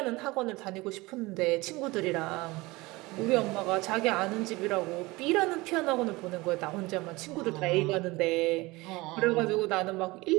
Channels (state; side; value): quieter; left; 22.1 dB